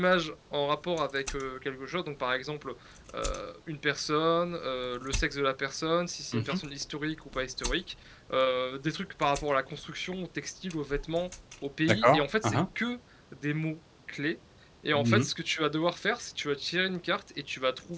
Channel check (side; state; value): both; identical; correlation 1.00